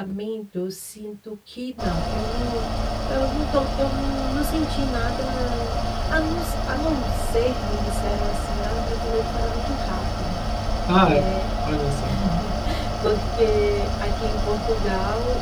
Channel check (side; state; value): both; identical; correlation 1.00